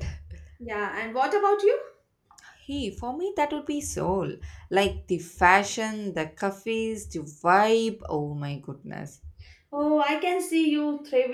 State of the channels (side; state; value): both; identical; correlation 1.00